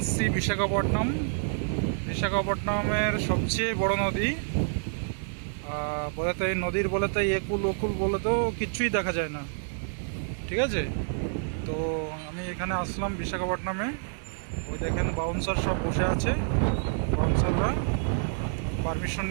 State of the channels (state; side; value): silent; left; 59 dB below the other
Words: বিশাখাপট্টনমের সবচেয়ে বড় নদী। বলে তো এই নদীর বলে তো একুল ওকুল বলে তো কিচ্ছুই দেখা যায় না, ঠিক আছে। তো আমি এখানে আসলাম বিশাখাপট্টনমে। দেখেন বাউন্সার সব বসে আছে, বাউন্সাররা। পারমিশন